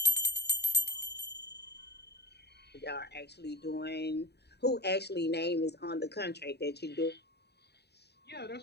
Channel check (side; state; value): right; late; 0.48 ms